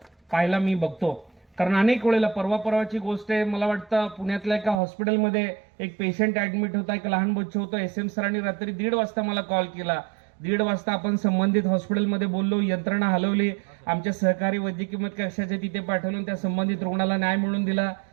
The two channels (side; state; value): left; drops out; at 4.8 s